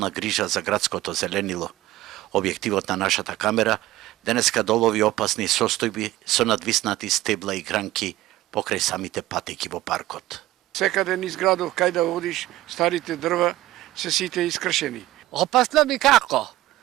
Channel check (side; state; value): left; quieter; 16.0 dB